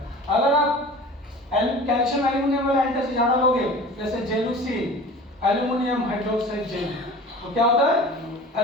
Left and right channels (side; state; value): both; normal; correlation 0.40